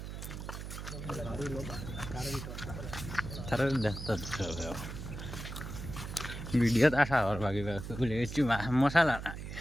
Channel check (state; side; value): noise; right; hum, 8 dB below the sound